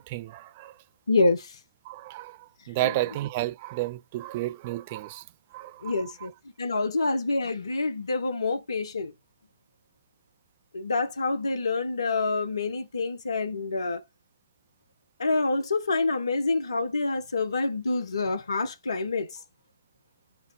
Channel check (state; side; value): inverted; both; correlation -0.76